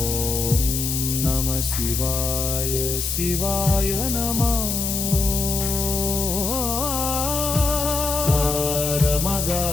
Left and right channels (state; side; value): noise; left; hiss, 2 dB below the sound